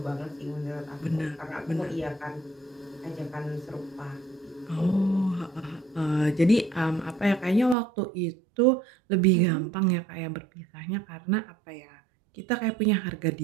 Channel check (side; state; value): left; drops out; at 7.8 s